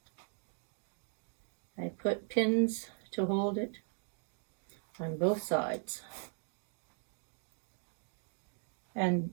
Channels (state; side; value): silent; left; 52 dB below the other